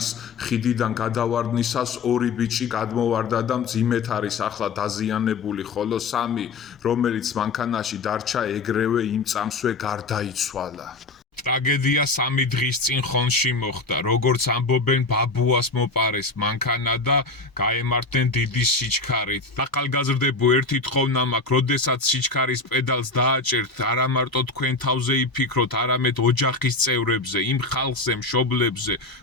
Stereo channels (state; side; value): quieter; right; 3.5 dB